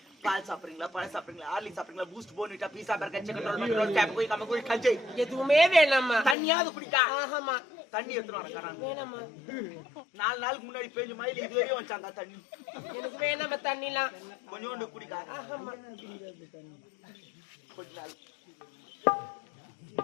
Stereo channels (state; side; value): drops out; right; at 6.4 s